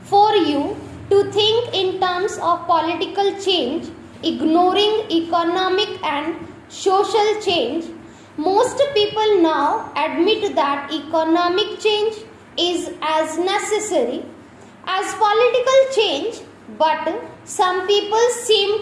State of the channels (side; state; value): both; identical; correlation 1.00